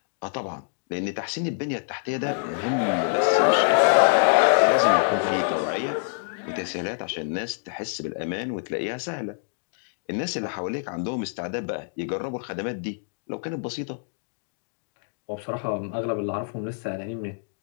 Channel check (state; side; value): silent; right; digital silence